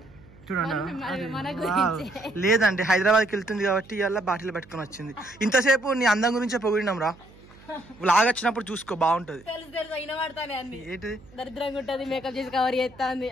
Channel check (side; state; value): right; noise; hum, 24 dB below the sound